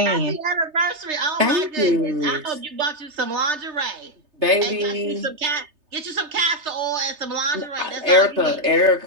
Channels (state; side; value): late; left; 3.3 ms